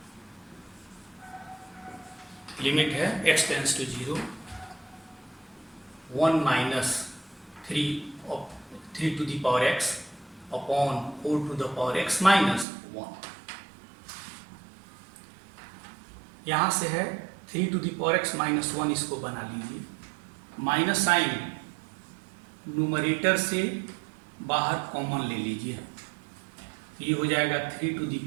Limit है x tends to 0, 1 minus 3 to the power x upon 4 to the power x minus 1। यहाँ से है 3 to the power x minus 1, इसको बना लीजिए, minus sign numerator से बाहर common ले लीजिए, ये हो जाएगा 3 टू द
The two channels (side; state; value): left; drops out; at 12.7 s